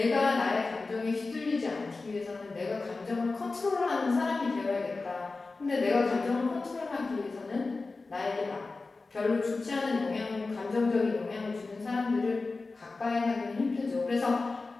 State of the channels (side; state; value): right; quieter; 3.7 dB